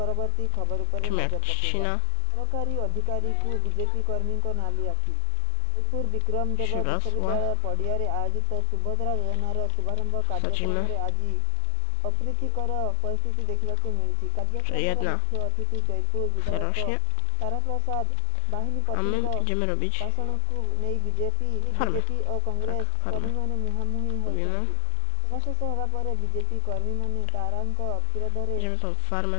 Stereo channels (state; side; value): different; both; correlation 0.00